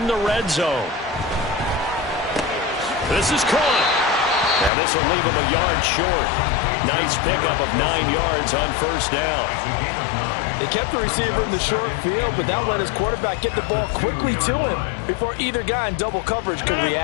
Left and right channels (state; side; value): drops out; right; at 4.7 s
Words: the red zone. This is caught. Now this will leave him a yard short. Nice pickup of 9 yards on first down. They kept the receiver in the short field, but that let his quarterback get the ball quickly to him before either guy in double coverage could